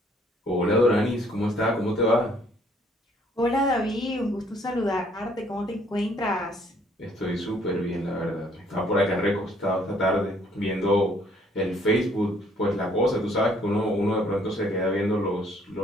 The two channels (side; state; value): both; normal; correlation 0.63